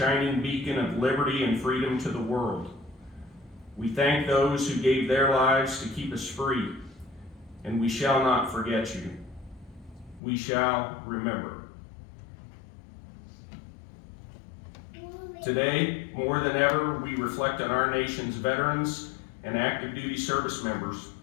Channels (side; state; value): right; drops out; at 10.2 s